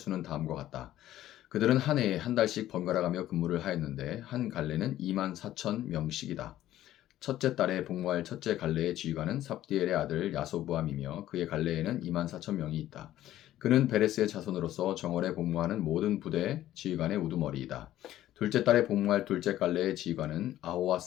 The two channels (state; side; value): quieter; right; 13.5 dB